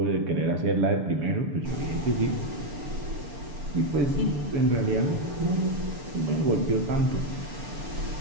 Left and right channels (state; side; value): late; left; 6.9 ms